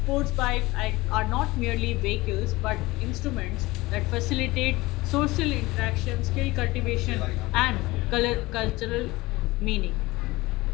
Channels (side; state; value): right; quieter; 20.6 dB